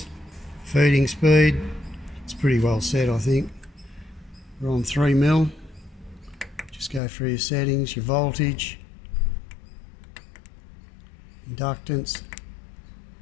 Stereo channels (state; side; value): drops out; right; at 7.0 s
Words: feeding speed, it's pretty well set I think. We're on 3mm, just go through your settings, your voltage, inductance,